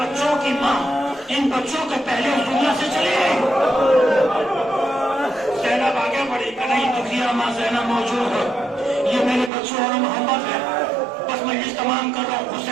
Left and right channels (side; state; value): left; drops out; at 9.5 s